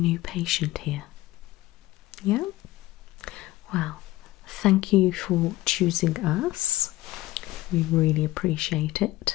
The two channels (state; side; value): quieter; right; 17.4 dB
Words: patient here. Yeah? Well, thank you for choosing us. We really appreciate